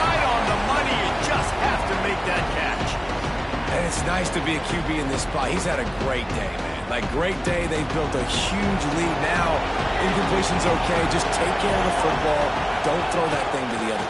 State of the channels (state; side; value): identical; both; correlation 1.00